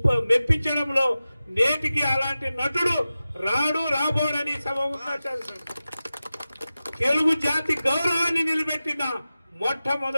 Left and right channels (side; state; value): both; inverted; correlation -0.95